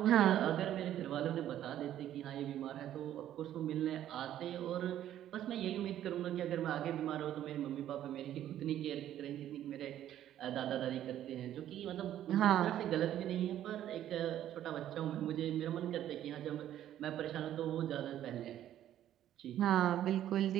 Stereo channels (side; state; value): left; quieter; 11.7 dB